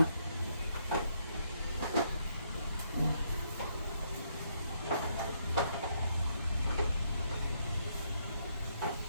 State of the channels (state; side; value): inverted; both; correlation -0.73